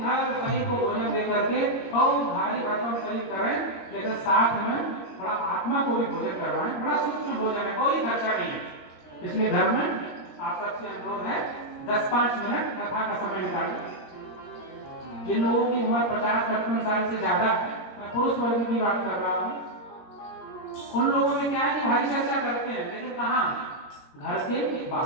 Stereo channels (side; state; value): right; late; 21 ms